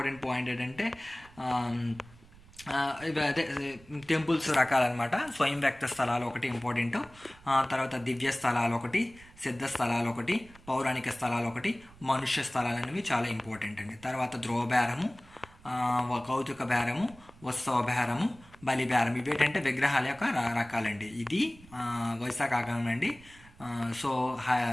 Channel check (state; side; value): noise; right; rumble, 23 dB below the sound